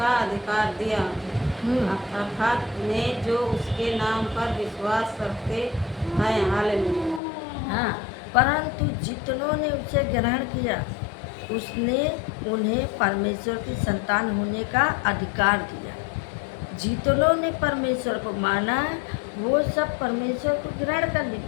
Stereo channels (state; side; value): drops out; right; at 7.2 s